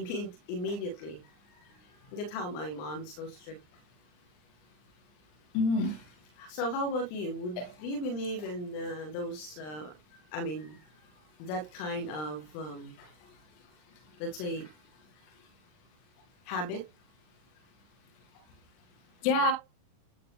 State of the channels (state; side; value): late; right; 39 ms